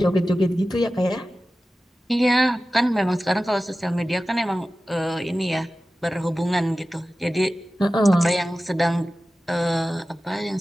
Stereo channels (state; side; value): normal; both; correlation 0.95